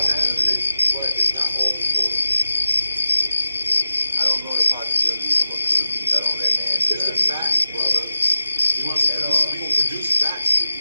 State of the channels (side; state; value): both; inverted; correlation -0.94